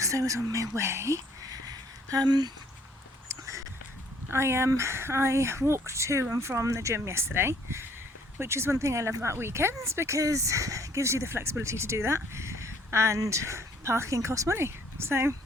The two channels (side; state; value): both; normal; correlation 0.61